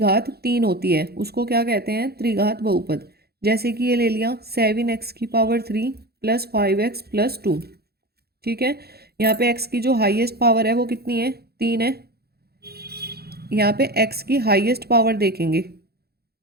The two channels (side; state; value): left; late; 0.46 ms